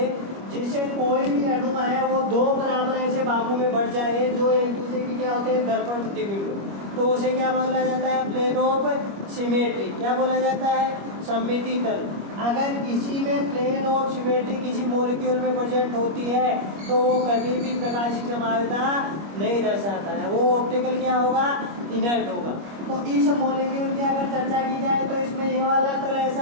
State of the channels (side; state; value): left; late; 25 ms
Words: जिसे कोई भी अणु है वो दो बराबर ऐसे भागों में बढ़ जाए जो एक दूसरे की क्या होते हैं? दर्पण प्रतिबिंब, तो उसे क्या बोला जाता है? Plane of symmetry. क्या बोला जाता है? सममिति तल। अगर किसी में प्लेन ऑफ सिमेट्री किसी मॉलिक्यूल में प्रेजेंट होती है तो वो कभी भी प्रकाशिक समावयवता नहीं दर्शाता है, वो ऑप्टिकल क्या होगा? इनर्ट होगा। तो इस मॉलिक्यूल की अगर चर्चा की जाए तो इसमें ये वाला तल